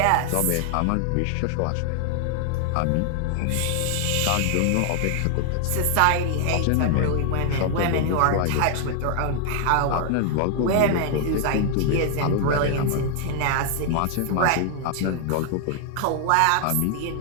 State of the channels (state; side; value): different; both; correlation 0.00